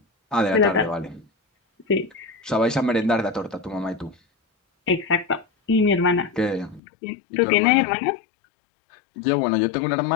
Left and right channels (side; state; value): right; drops out; at 6.8 s